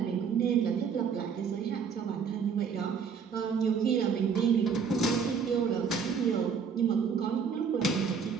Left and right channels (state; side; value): quieter; left; 6.3 dB